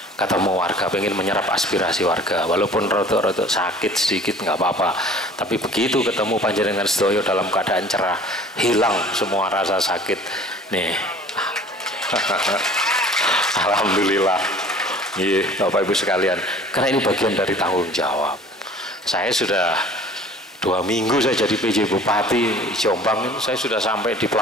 ketemu warga, pengen menyerap aspirasi warga, walaupun rotok-rotok sakit sedikit nggak apa-apa. Tapi begitu ketemu panjenengan sedoyo dalam keadaan cerah, hilang semua rasa sakit nih. Alhamdulillah. Iya, Bapak Ibu sekalian, karena ini bagian dari tanggung jawab. Saya sudah 2 minggu saya jadi PJ Bupati Jombang ini, saya sudah sampai di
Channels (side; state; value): both; normal; correlation 0.47